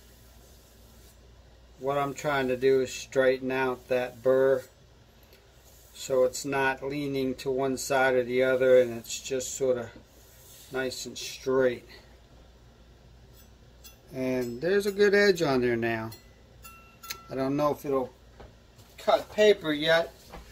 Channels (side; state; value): both; identical; correlation 1.00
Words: What I'm trying to do is straighten out that burr so it's not leaning to one side or the other, and it's just sort of nice and straight. And there's a good edge on there now. I don't know if it'll cut paper yet,